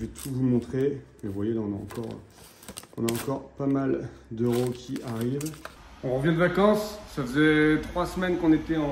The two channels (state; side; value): identical; both; correlation 1.00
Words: tout vous montrer. Mais vous voyez, là, on a encore pas mal d'euros qui arrivent. On revient de vacances, ça faisait 3 semaines qu'on était